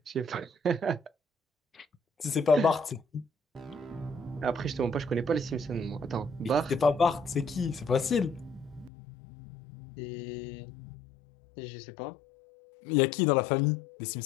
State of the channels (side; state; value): right; drops out; at 8.9 s